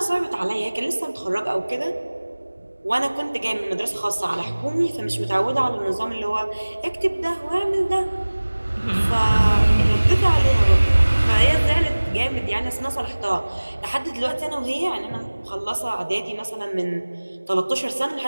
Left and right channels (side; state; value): both; inverted; correlation -1.00